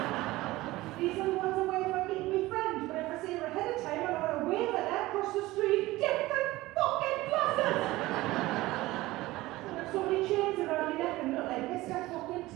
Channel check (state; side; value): quieter; left; 18.6 dB